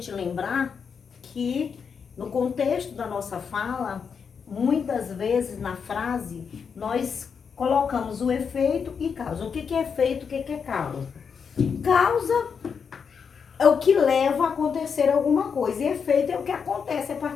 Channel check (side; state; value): right; quieter; 6.3 dB